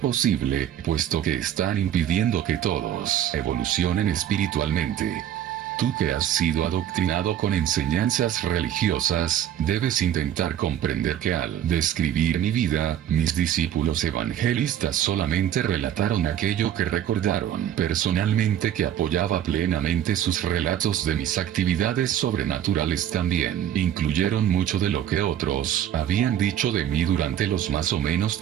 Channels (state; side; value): quieter; left; 10.6 dB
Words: puesto que están impidiendo que todos evolucionen espiritualmente. Tú que has sido adoctrinado con enseñanzas religiosas, debes intentar comprender que al describir mi vida, mis discípulos evangelistas solamente relataron aquello que recordaron personalmente, que apoyaba plenamente sus relatos de mis actividades sobrenaturales. También incluyeron mucho de lo que otros habían dicho de mí durante los más o menos